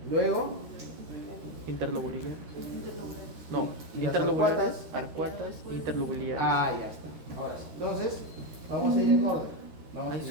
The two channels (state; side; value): late; left; 13 ms